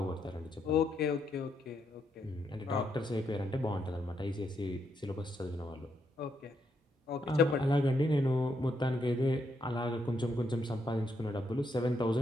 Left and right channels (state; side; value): normal; both; correlation 0.78